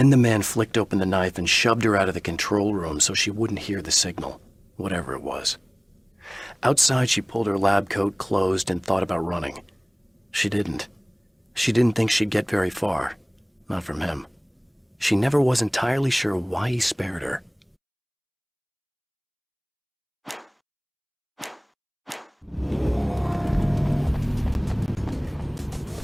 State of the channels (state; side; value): identical; both; correlation 1.00